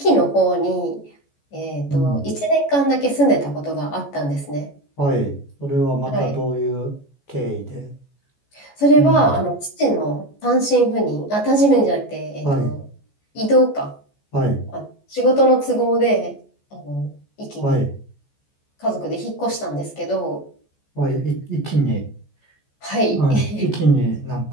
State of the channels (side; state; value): right; late; 14 ms